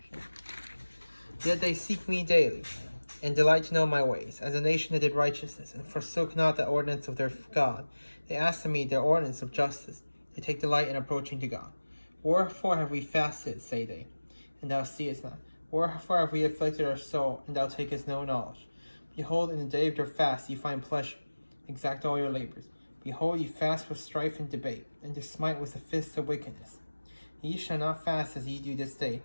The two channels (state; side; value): inverted; both; correlation -1.00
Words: Yet they seek me daily, and delight to know my ways, as a nation that did righteousness, and forsook not the ordinance of their God. They ask of me their ordinance of justice. They take delight in approaching to God. Wherefore have we fasted, say they, and thou seest not? Wherefore have we afflicted our soul, and thou takest no knowledge? Behold, in the day of your fast ye find pleasure, exact all your labors. Behold, ye fast for strife and debate, and to smite with the fists of wickedness. Ye shall not fast as ye do this day,